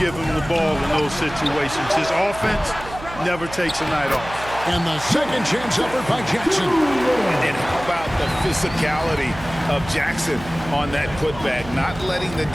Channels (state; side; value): noise; right; hum, 14 dB below the sound